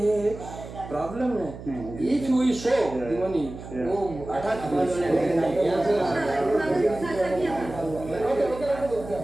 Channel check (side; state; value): right; noise; hum, 13 dB below the sound